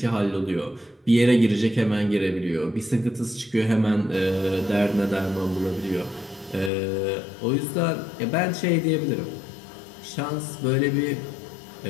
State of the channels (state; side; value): drops out; right; at 6.7 s